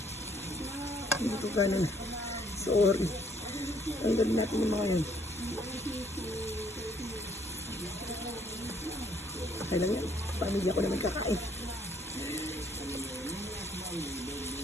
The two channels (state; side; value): normal; both; correlation 0.65